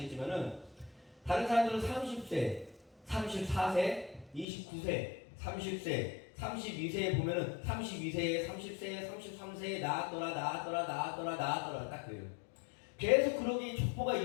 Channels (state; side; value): drops out; right; at 4.5 s